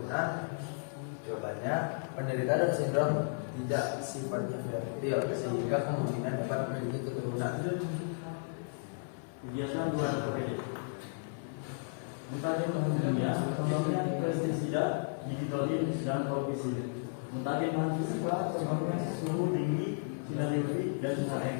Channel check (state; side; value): silent; right; 55 dB below the other